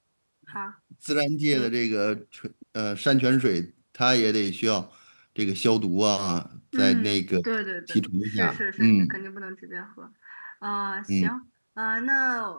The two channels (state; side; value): inverted; both; correlation -1.00